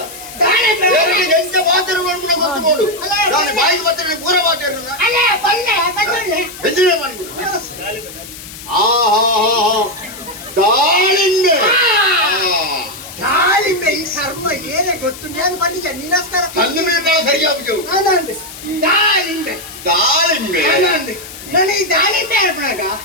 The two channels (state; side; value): noise; left; hiss, 14 dB below the sound